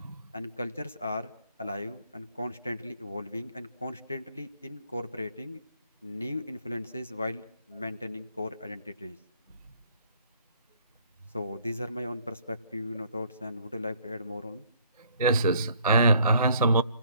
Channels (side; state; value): both; inverted; correlation -0.63